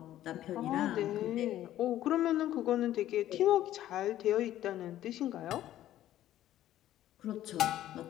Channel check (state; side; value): quieter; right; 13.0 dB